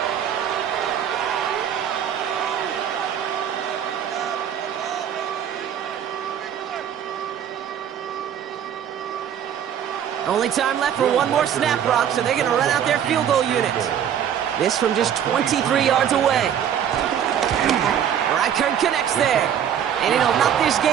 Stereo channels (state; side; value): quieter; left; 9.2 dB